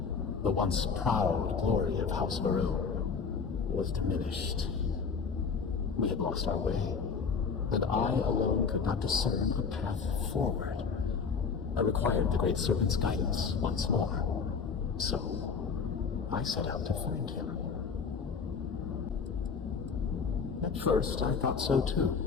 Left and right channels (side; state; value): right; quieter; 5.5 dB